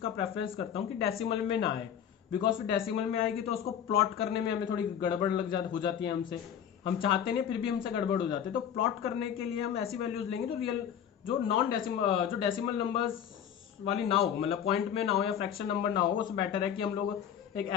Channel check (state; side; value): quieter; right; 9.0 dB